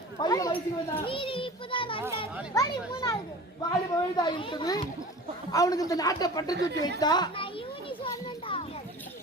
பையன் வயசுக்கு வந்தா வாலிப வயதா இருக்குது. அவனுக்கு இந்த நாட்டை பட்டு தூக்கி வைத்தா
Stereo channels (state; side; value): normal; both; correlation 0.38